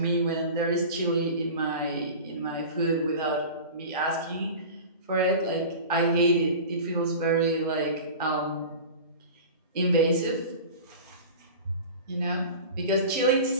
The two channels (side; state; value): both; inverted; correlation -0.34